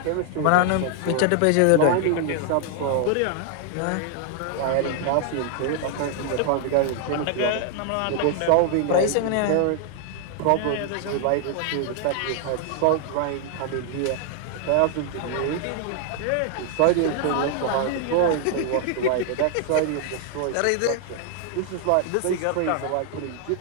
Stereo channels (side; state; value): both; different; correlation 0.00